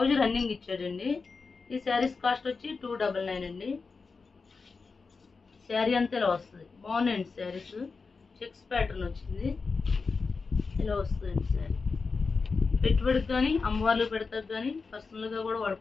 రన్నింగ్ ఇచ్చాడండి. ఈ శారీస్ కాస్ట్ వచ్చి 299 అండి. శారీ అంతా ఇలా వస్తుంది. బాగున్నాయండి శారీస్. చెక్స్ ప్యాటర్న్ వచ్చింది, ఇలా వస్తుందండి శారీ. పెట్టుబడికి కానీ అమ్మవార్లు పెడతారు, కానీ పర్సనల్గా కూడా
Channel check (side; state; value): right; quieter; 4.6 dB